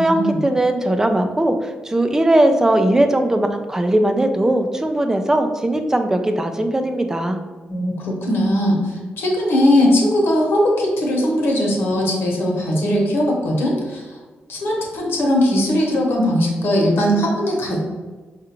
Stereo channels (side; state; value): both; normal; correlation 0.84